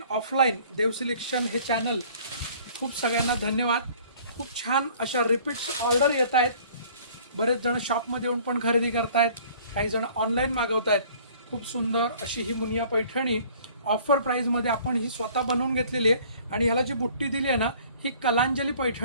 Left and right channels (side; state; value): both; inverted; correlation -0.53